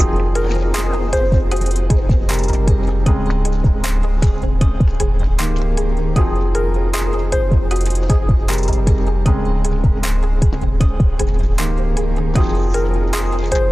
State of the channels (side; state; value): both; normal; correlation 0.97